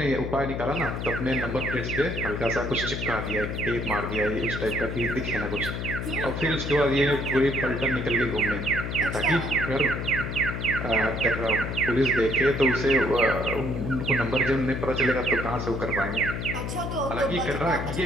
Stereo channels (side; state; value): left; noise; hum, 4 dB below the sound